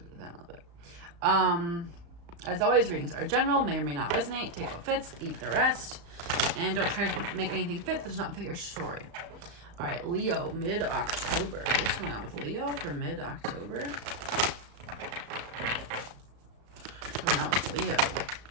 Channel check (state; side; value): late; left; 35 ms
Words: it down a little bit. As always, readings are general, may or may not resonate. Take what fits, leave the rest. And don't try to make anything fit that does not fit your story. All right, Leo, mid-October. What's going on with Leo for mid-October? What's going on with Leo?